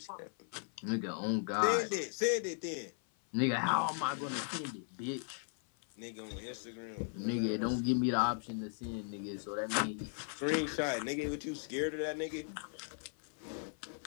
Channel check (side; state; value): right; silent; 53 dB below the other